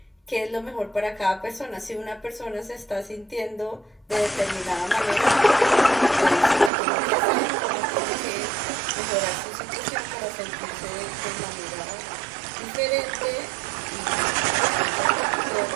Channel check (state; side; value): drops out; left; at 6.7 s